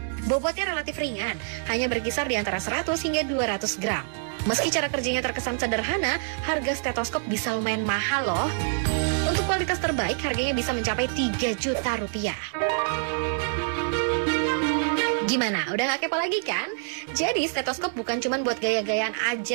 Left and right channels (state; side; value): silent; left; digital silence